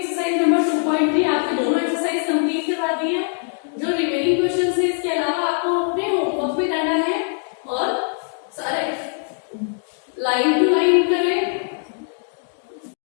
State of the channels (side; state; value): right; silent; 59 dB below the other